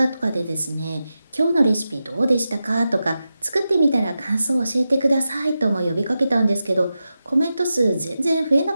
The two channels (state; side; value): inverted; both; correlation -0.91